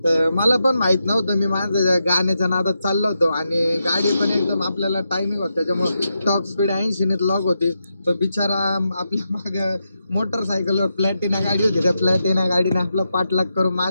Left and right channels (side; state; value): both; inverted; correlation -0.85